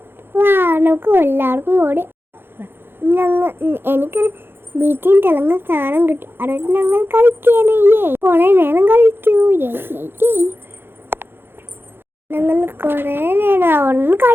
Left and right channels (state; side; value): late; left; 0.10 ms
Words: നമുക്ക് എല്ലാവർക്കും കൂടി എനിക്ക് വീട്ടിൽ തിളങ്ങ സാധനം കിട്ടി. അതൊക്കെ ഞങ്ങൾ കളിക്കാനേ കൊറേ നേരം കളിച്ചു. ഞങ്ങൾ കൊറേ നേരം അവിടെ